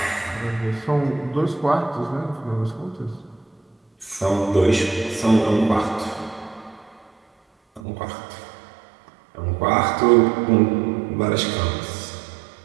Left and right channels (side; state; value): left; drops out; at 7.8 s